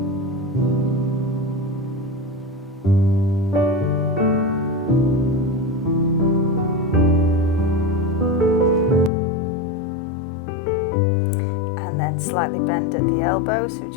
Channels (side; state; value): right; drops out; at 9.1 s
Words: Slightly bend at the elbow, so we've